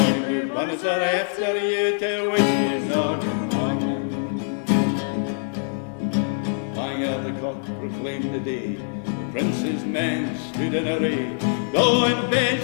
blue bonnets are after you to wish you all good morning. Clang of the cock proclaimed the day. Prince's men stood in array, though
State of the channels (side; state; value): right; silent; 63 dB below the other